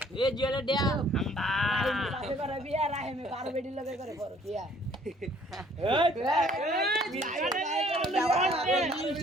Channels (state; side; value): normal; both; correlation 0.59